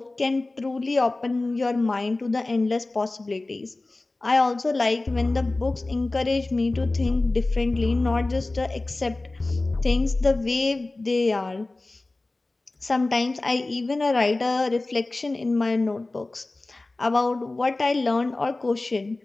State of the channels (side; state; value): right; quieter; 3.1 dB